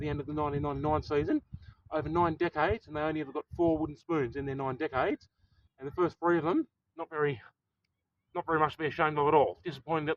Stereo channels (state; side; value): identical; both; correlation 1.00